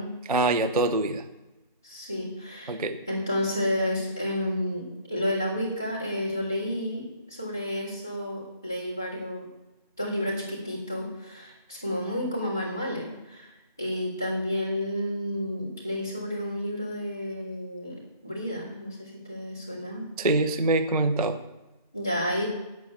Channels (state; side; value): inverted; both; correlation -0.54